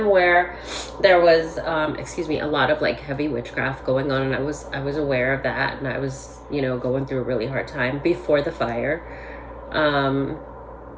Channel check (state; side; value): identical; both; correlation 1.00